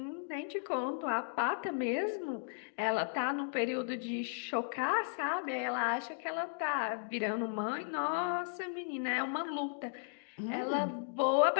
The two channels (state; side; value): silent; right; digital silence